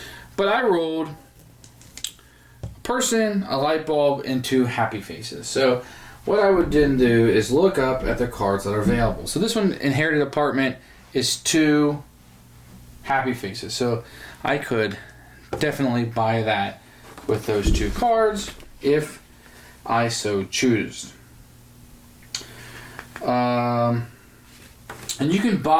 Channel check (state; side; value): identical; both; correlation 1.00